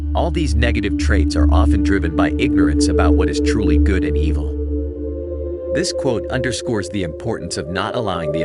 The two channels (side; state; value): both; identical; correlation 1.00